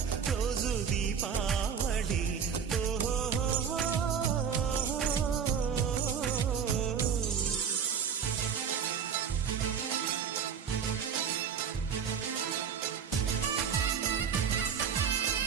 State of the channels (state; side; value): quieter; left; 7.1 dB